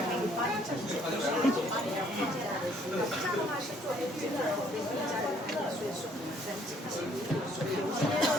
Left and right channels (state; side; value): normal; both; correlation 0.63